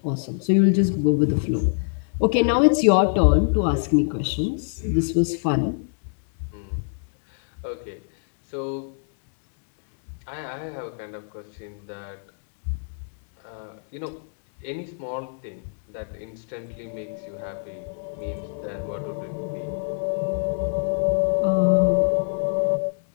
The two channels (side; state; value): right; silent; digital silence